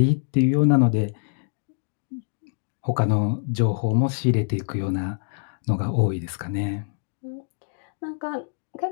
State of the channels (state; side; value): silent; right; digital silence